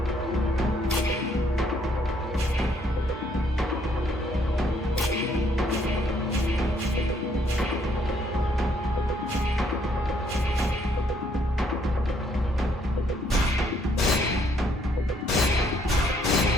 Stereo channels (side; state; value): both; normal; correlation 0.68